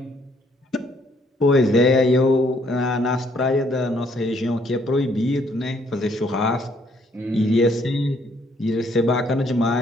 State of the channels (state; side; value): normal; both; correlation 0.67